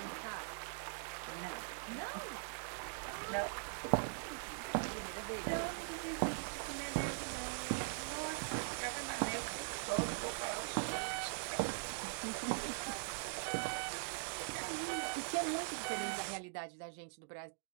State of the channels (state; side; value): silent; left; digital silence